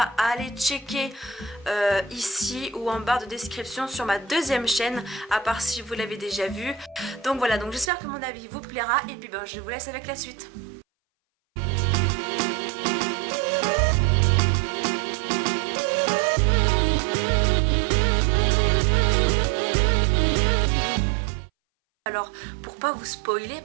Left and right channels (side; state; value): left; drops out; at 7.9 s